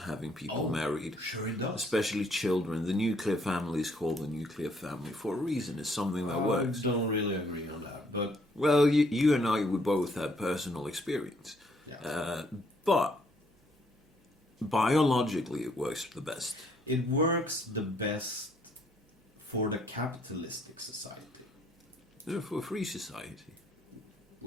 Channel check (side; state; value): both; normal; correlation 0.67